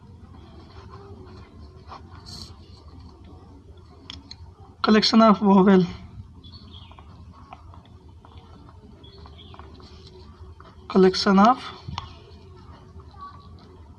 collection of vowel, collection of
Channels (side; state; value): both; identical; correlation 1.00